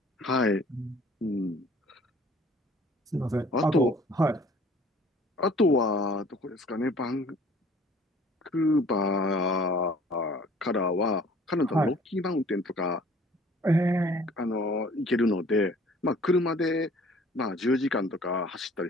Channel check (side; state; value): both; normal; correlation 0.53